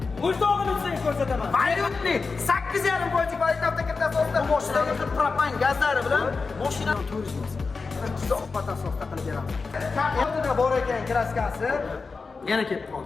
buzdog'ini sizga ko'rsataman. Valyutli 8,5% valyut avtokirtasi ostida mashinaga propan gazlari bilan mashina turizmi. Uzoq batafsilda qilib beramiz. Kaftida bor ekan kraskasi. Yana kelib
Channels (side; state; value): right; quieter; 4.4 dB